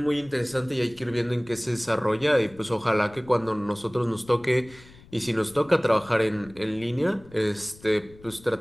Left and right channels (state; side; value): noise; left; rumble, 23 dB below the sound